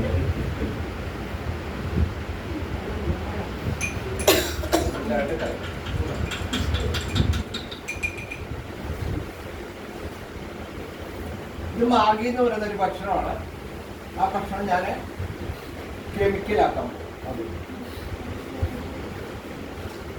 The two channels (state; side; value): identical; both; correlation 1.00